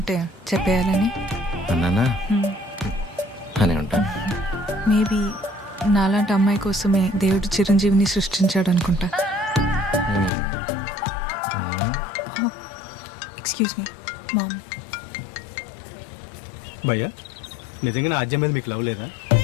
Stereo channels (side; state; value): right; drops out; at 10.3 s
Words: చెప్పేయాలని. అన్నానా? అనే ఉంటాను. మేబీ నాలాంటి అమ్మాయి కోసమే దేవుడు చిరంజీవిని సృష్టించాడు అనుకుంటా. Excuse me ma'am. భయ్యా, నిజంగా నా ఆజ్యం మీద మీకు లవ్ లేదా?